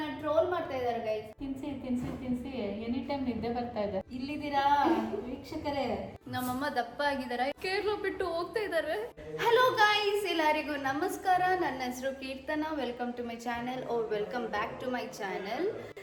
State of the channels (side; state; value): both; identical; correlation 1.00